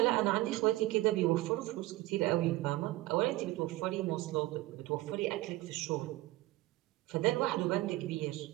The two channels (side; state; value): left; quieter; 18.5 dB